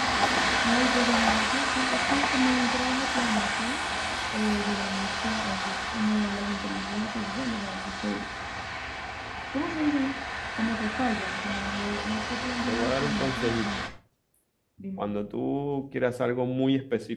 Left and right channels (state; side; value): identical; both; correlation 1.00